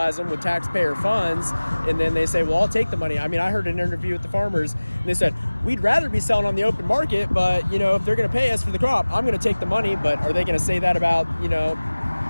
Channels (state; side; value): inverted; both; correlation -1.00